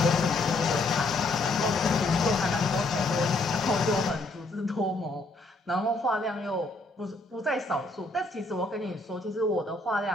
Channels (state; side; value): quieter; right; 3.0 dB